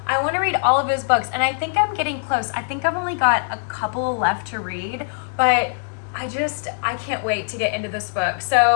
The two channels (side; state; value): right; silent; digital silence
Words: want to read all of his books. And I think I'm getting close. I think I've only got a couple left to read, but I can't wait to get into this book.